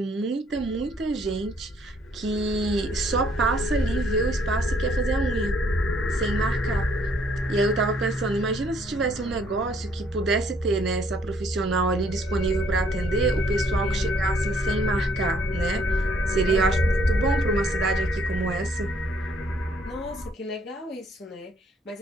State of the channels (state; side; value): normal; both; correlation 0.65